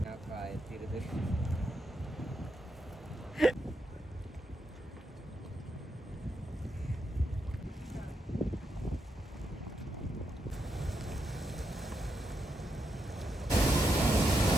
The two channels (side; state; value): both; normal; correlation 0.82